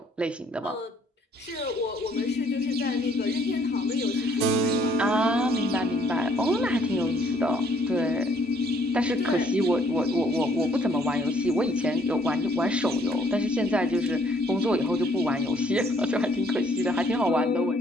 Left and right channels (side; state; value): both; normal; correlation 0.64